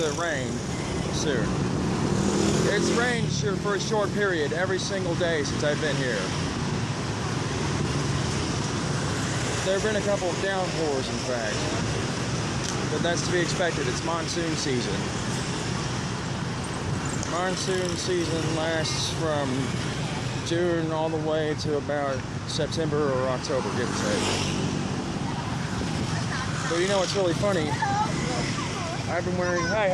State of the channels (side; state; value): both; identical; correlation 1.00